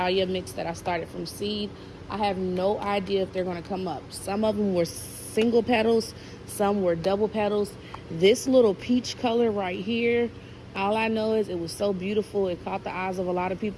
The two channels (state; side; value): identical; both; correlation 1.00